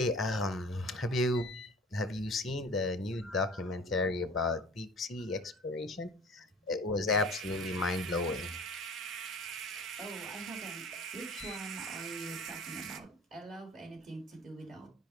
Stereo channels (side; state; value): both; normal; correlation 0.43